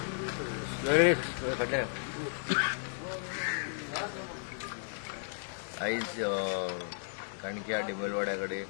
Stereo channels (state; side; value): silent; right; digital silence